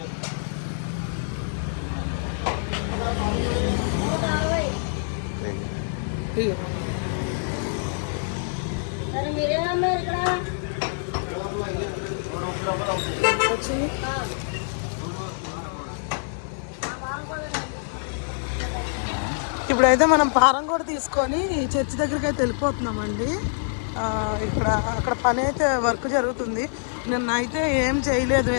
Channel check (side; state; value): right; silent; digital silence